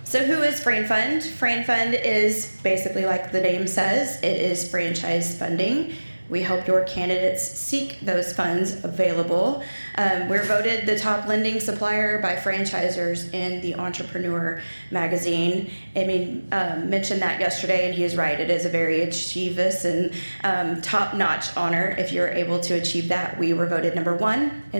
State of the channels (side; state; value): both; inverted; correlation -1.00